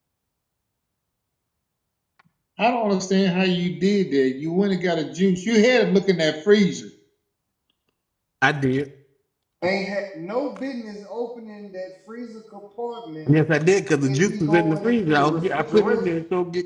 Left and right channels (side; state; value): both; identical; correlation 1.00